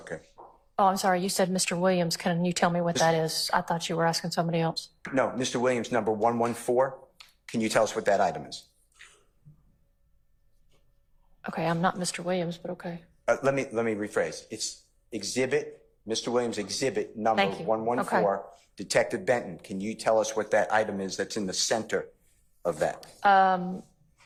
Oh, I'm sorry. You said Mr. Williams. Can you tell me what that is? I thought you were asking somebody else. No, Mr. Williams, number 114, can you tell us what that item is? Okay, I'm not Mr. Williams, but okay. Let me rephrase. It's exhibit, Mr. Williams, exhibit number Thank you. 114. Okay. Detective Benton, can you tell us what that item is that's in the center of that?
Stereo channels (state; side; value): identical; both; correlation 1.00